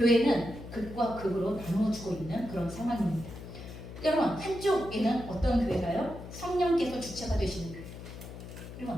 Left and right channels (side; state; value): left; noise; hum, 12 dB below the sound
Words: 극과 극으로 나누어지고 있는 그런 상황입니다. 여러분 한쪽에는 어떤 교회가요? 성령께서 주체가 되시는 교회.